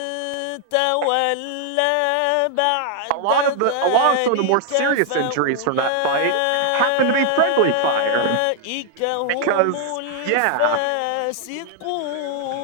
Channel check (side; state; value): both; different; correlation 0.00